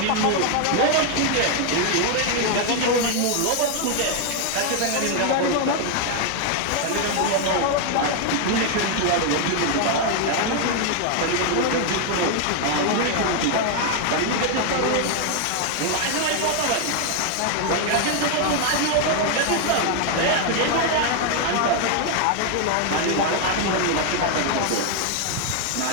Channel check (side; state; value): both; different; correlation 0.01